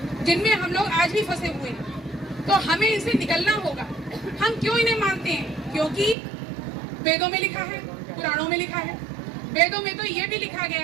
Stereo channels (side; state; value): left; drops out; at 6.2 s